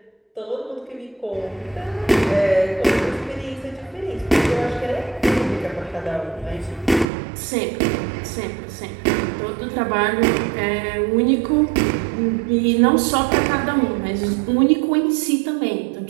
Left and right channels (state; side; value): drops out; left; at 7.1 s